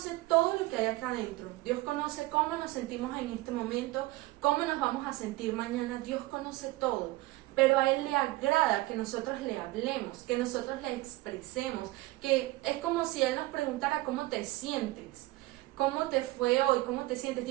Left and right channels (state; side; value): quieter; left; 19.7 dB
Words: todo lo que hay acá adentro. Dios conoce cómo nos sentimos en este momento, cómo nos vamos a sentir mañana. Dios conoce todo. Pero a Él le agrada que nosotros le hablemos, que nosotros le expresemos, que es como si Él nos preguntara cómo te sientes, cómo te fue hoy, cómo te sientes.